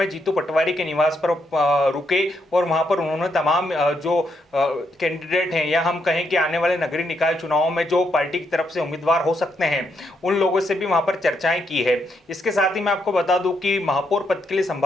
जीतू पटवारी के निवास पर रुके और वहां पर उन्होंने तमाम जो कैंडिडेट हैं या हम कहें कि आने वाले नगरीय निकाय चुनाव में जो पार्टी की तरफ से उम्मीदवार हो सकते हैं उन लोगों से भी वहां पर चर्चाएं की है। इसके साथ ही मैं आपको बता दूं कि महापौर पद के लिए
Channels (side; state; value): both; normal; correlation 0.77